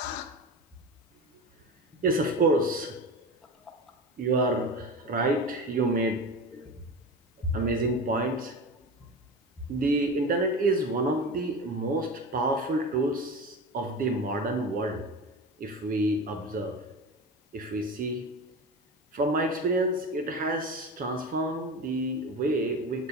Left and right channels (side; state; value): both; normal; correlation 0.28